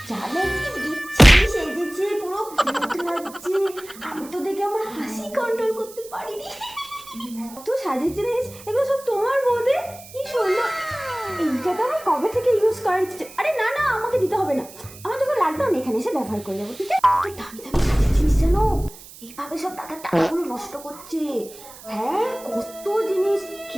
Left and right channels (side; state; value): right; noise; hiss, 18 dB below the sound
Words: জানো কি বিচ্ছিরি সেজেছে, পুরো ভূত লাগছে। আমি তো দেখে আমার হাসি কন্ট্রোল করতে পারিনি। কত সাজেছে রে, এগুলো সব তোমার বৌদি। কি সুন্দর। এইটা তো আমার কবে থেকে ইউজ করার ইচ্ছে। আরে না না, আমাকে দিতে হবে না। আমার যখন লাগবে আমি এখানে এসে ব্যবহার করে যাবো, ঠিক আছে? তো দামি দামি সাজিয়েছিস জানো, এইভাবে সব দাদার টাকাগুলো নষ্ট করছে। হ্যাঁ, কত জিনিস